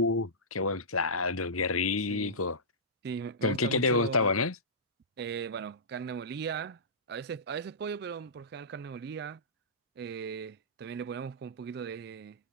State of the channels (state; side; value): normal; both; correlation -0.19